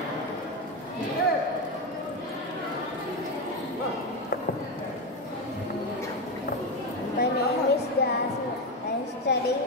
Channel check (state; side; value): normal; both; correlation 0.12